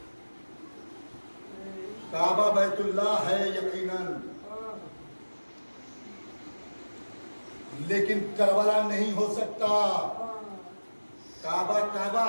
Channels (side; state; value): both; inverted; correlation -1.00